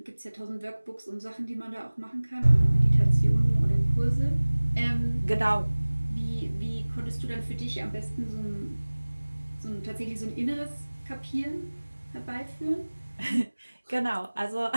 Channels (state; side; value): inverted; both; correlation -1.00